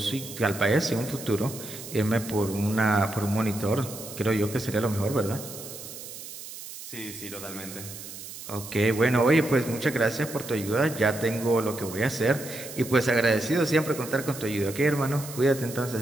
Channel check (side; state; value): right; noise; hiss, 12 dB below the sound